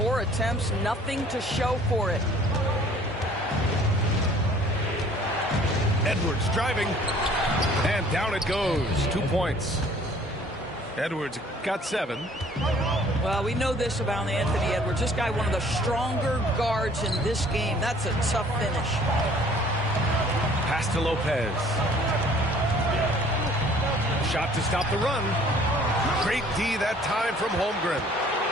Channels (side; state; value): both; normal; correlation 0.55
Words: attempts, nothing to show for it. Edwards driving. And down it goes. 2 points. Edwards got 7. Well, we know this about Anthony Edwards. This guy, one of the stronger guards in this game. That's a tough finish. Pass to Lopez. Shot to stop the run. Great D that time from Holmgren.